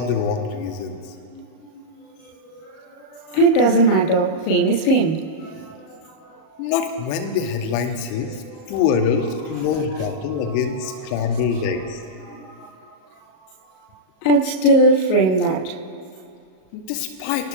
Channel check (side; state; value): right; late; 38 ms